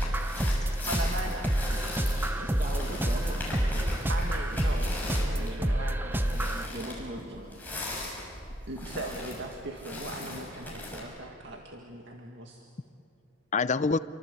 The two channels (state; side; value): normal; both; correlation 0.71